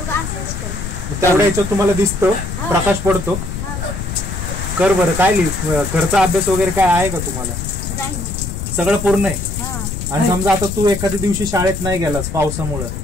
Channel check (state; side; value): noise; left; rumble, 6 dB below the sound